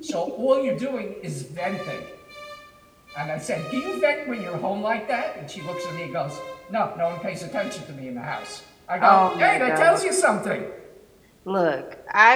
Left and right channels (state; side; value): identical; both; correlation 1.00